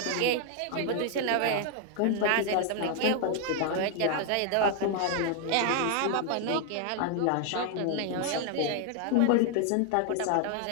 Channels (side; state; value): both; different; correlation 0.00